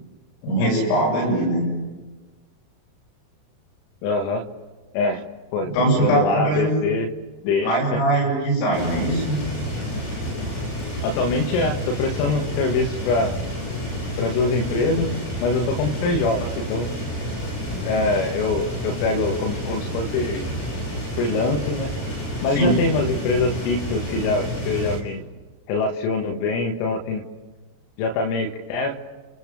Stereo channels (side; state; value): right; late; 33 ms